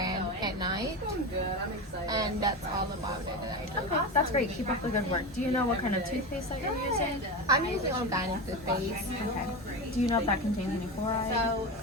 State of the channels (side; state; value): both; normal; correlation 0.22